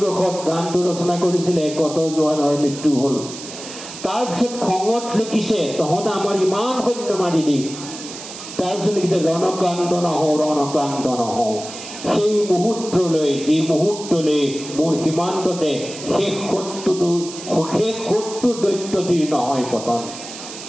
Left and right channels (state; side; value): noise; right; hiss, 12 dB below the sound